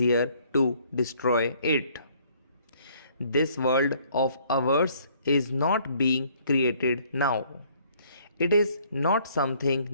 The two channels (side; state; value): both; inverted; correlation -0.62